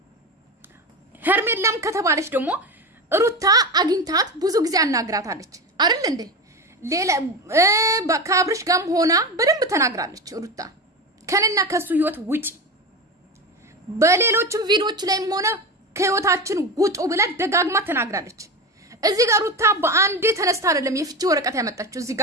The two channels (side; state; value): both; normal; correlation 0.22